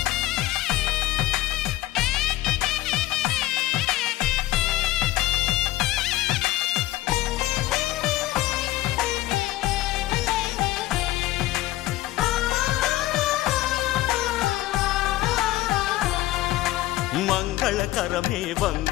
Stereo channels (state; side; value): quieter; right; 16.3 dB